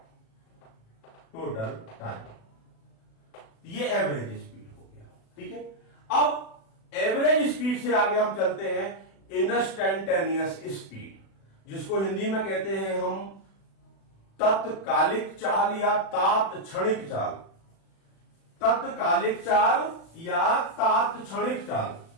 total time. ये एवरेज स्पीड हो गया। ठीक है, अब एवरेज स्पीड से आगे हम चलते हैं इंस्टैंटेनियस स्पीड, जिसको हिंदी में कहते हैं हम तत्कालिक चाल या तात्क्षणिक चाल। तत्कालिक चाल या तात्क्षणिक चाल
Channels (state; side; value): late; right; 36 ms